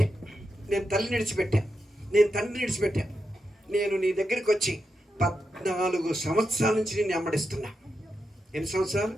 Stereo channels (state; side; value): normal; both; correlation 0.87